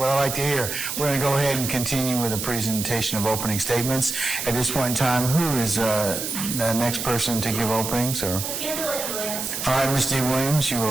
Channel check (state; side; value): noise; right; hiss, 4 dB below the sound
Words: I like to hear. We're going to go ahead and continue with the presentation of opening statements. At this point in time, who is the next person to give openings? Or? Angela Williams. All right, Ms. D. Williams, you